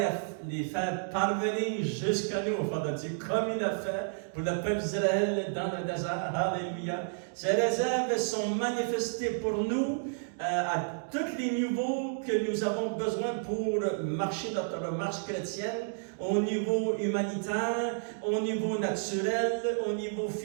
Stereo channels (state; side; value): silent; left; digital silence